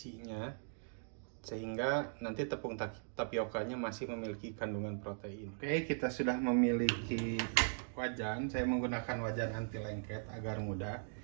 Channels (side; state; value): left; silent; digital silence